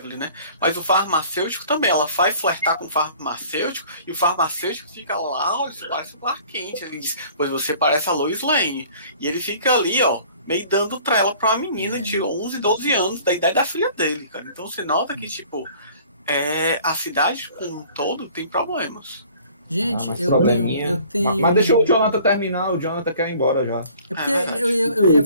né? Mas o farmacêutico também, ela vai flertar com o farmacêutico e o farmacêutico fica lá, olha, isso parece o Clark Kent. Ele diz, pois você parece a Lois Lane. E ele fica ali, ó, meio dando trela pra uma menina de 11, 12 anos, da idade da filha dele, cara. Então você nota que, tipo, a cidade como um todo tem problemas. Gente, eu tenho... Mas deixa o Jonathan terminar, o Jonathan quer ir embora já. É porque eu ia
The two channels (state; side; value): inverted; both; correlation -0.51